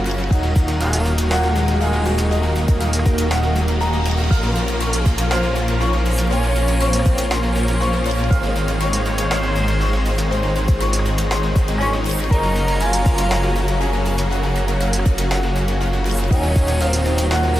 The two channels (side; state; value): both; normal; correlation 0.91